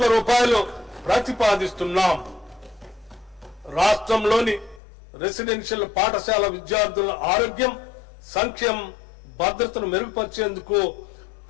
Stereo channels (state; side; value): drops out; right; at 4.8 s